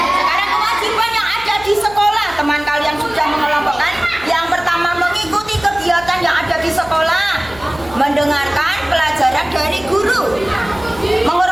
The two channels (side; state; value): left; noise; hum, 19 dB below the sound